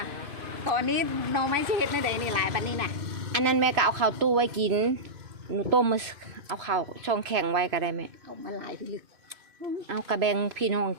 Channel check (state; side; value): late; left; 3.0 ms